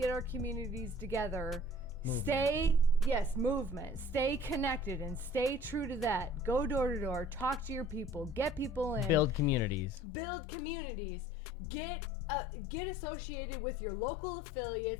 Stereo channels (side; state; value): right; drops out; at 10.0 s